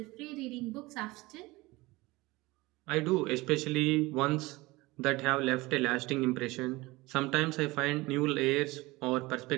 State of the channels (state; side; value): quieter; left; 21.3 dB